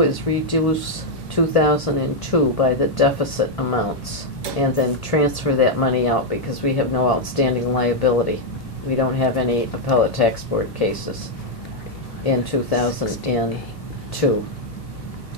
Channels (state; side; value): normal; both; correlation -0.01